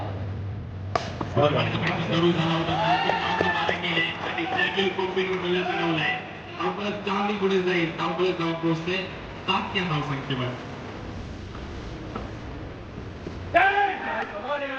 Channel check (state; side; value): identical; both; correlation 1.00